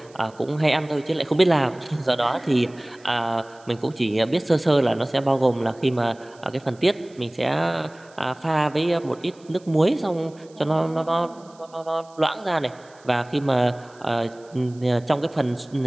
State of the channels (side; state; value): right; noise; hiss, 28 dB below the sound